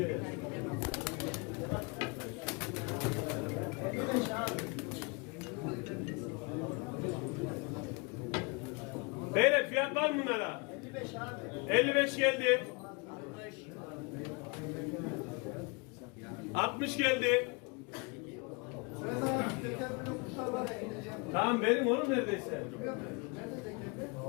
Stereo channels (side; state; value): right; quieter; 30.7 dB